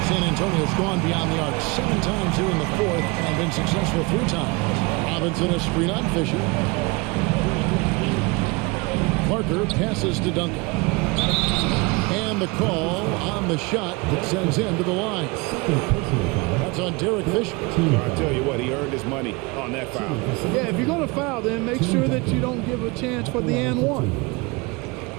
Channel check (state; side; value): quieter; left; 26.4 dB